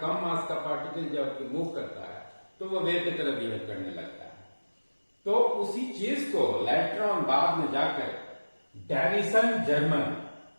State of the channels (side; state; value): both; inverted; correlation -1.00